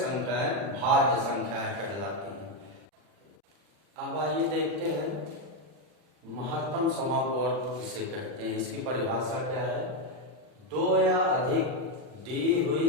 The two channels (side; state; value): left; late; 40 ms